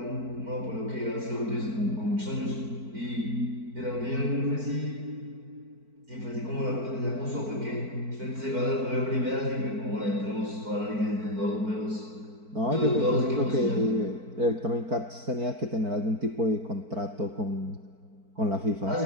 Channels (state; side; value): late; left; 4.5 ms